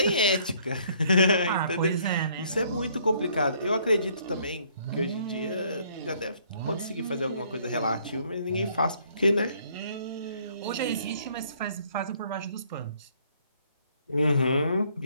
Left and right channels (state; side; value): inverted; both; correlation -0.63